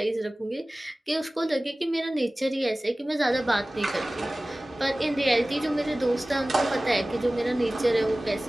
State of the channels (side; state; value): both; normal; correlation 0.98